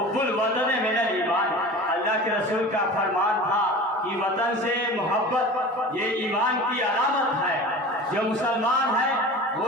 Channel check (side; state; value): both; normal; correlation 0.36